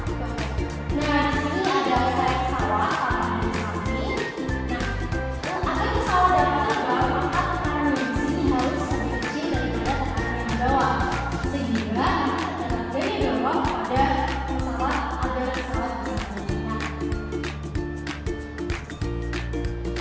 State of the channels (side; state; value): both; identical; correlation 1.00